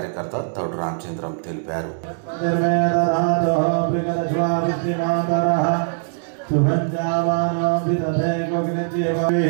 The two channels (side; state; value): left; silent; 65 dB below the other